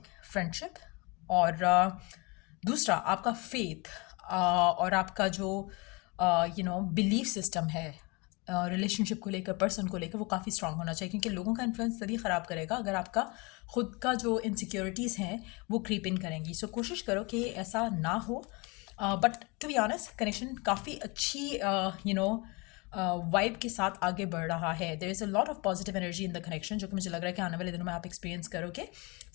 फ्रेंडशिप, और दूसरा आपका फेथ, और आपका जो बिलीफ सिस्टम है रिलेशनशिप को लेकर, पर्सन को लेकर, वो काफ़ी स्ट्रांग होना चाहिए। क्योंकि लोगों का इन्फ्लुएंस तभी ख़राब करेगा अगर आपका खुद का जो इनसिक्योरिटीज़ हैं वो क्रीप इन करेंगी। सो कोशिश करो कि ऐसा ना हो। But to be honest connection काफ़ी अच्छी वाइब के साथ आगे बढ़ रहा है। There is a lot of positive energy in the connection, जो कि मुझे लग रहा है कि आने वाले दिनों में आप एक्सपीरियंस करोगे।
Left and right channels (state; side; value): quieter; right; 27.8 dB